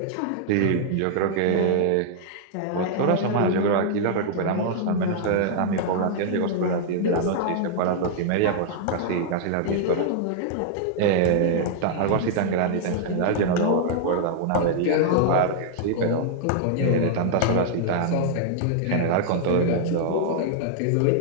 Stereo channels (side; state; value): both; different; correlation -0.01